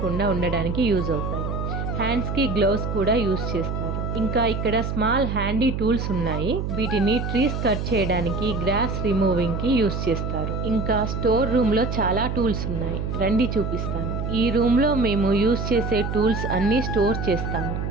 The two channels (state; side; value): noise; right; hum, 3 dB below the sound